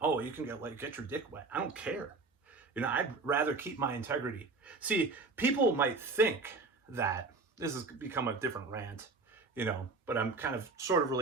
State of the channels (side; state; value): left; quieter; 3.9 dB